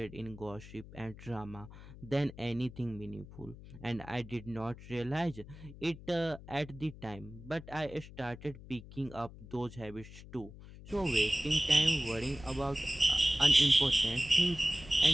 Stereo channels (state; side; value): noise; left; hum, 16 dB below the sound